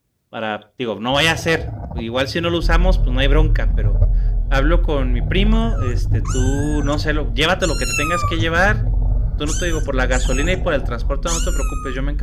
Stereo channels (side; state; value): both; identical; correlation 1.00